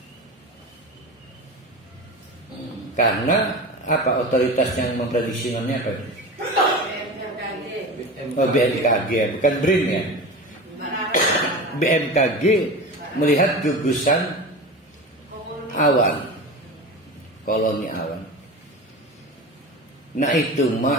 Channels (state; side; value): normal; both; correlation 0.29